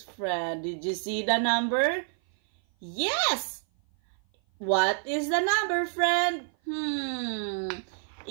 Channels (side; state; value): left; silent; 56 dB below the other